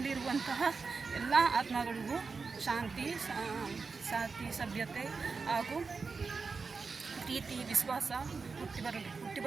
ಎಲ್ಲ ಆತ್ಮಗಳಿಗೂ ಶಾಂತಿ, ಸಭ್ಯತೆ ಹಾಗೂ ಪ್ರೀತಿ, ವಿಶ್ವಾಸ ಹುಟ್ಟಿ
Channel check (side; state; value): left; quieter; 4.7 dB